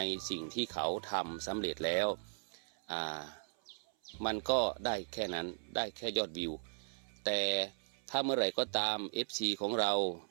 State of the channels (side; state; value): left; silent; 53 dB below the other